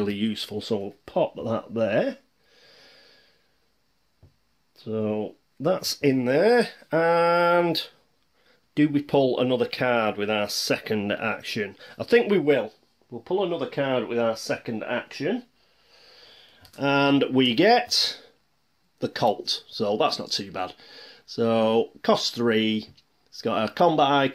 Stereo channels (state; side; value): identical; both; correlation 1.00